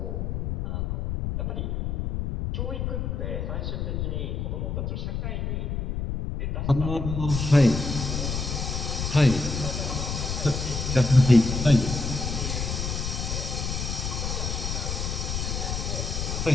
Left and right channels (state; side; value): noise; left; rumble, 2 dB below the sound